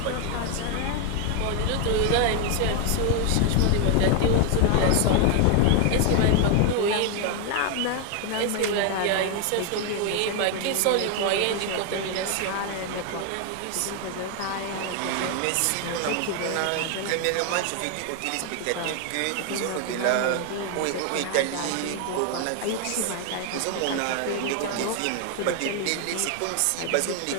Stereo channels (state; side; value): different; both; correlation 0.00